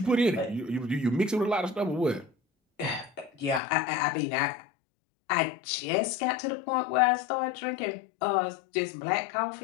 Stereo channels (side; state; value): right; drops out; at 3.6 s